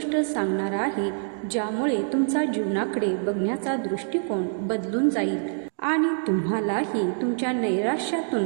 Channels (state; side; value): silent; left; digital silence